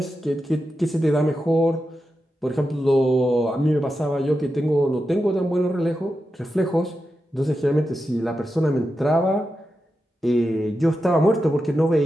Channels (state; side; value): normal; both; correlation 0.89